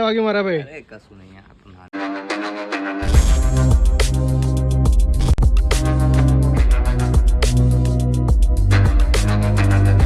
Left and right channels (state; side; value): identical; both; correlation 1.00